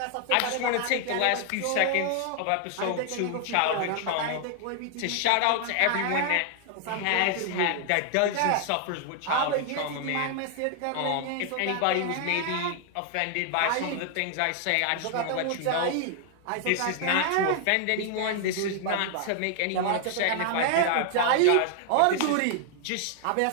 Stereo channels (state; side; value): different; both; correlation 0.00